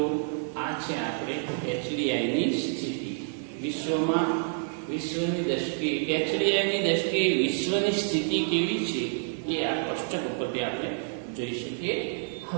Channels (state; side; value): silent; left; digital silence